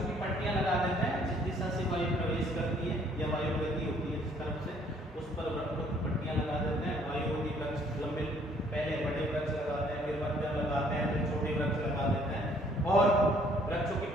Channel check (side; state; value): both; normal; correlation 0.62